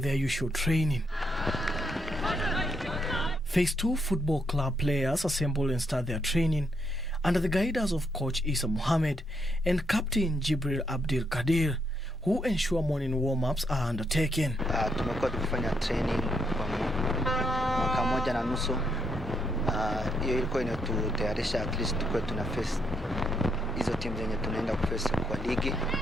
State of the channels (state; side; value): normal; both; correlation 0.77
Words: usual training. Phase 2 Football Club players assemble and start their training under the guidance of Coach Isa Mohammed and Captain Jibril Abdul Kadir, who ensure morning warm-ups are undertaken. Tumekuwa tukifanya training kwa mwaka moja na nusu. Hiyo ilikuwa inatutayarisha at least tukue tuna face hizo teams zenye tunaenda kuface kwa ligi.